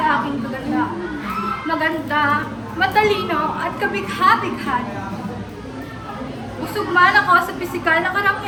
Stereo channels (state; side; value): identical; both; correlation 1.00